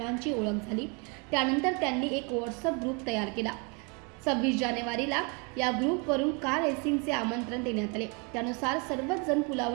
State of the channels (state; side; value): quieter; left; 33.1 dB